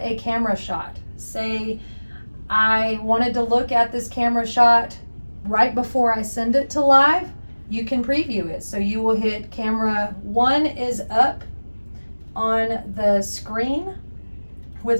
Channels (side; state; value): both; inverted; correlation -1.00